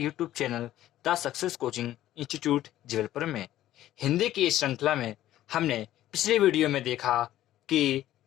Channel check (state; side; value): quieter; right; 13.6 dB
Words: channel the success coaching institute Jabalpur में। हिंदी की इस श्रृंखला में हमने पिछले वीडियो में देखा कि